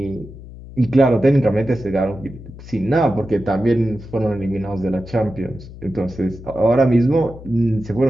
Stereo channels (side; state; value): left; noise; hum, 15 dB below the sound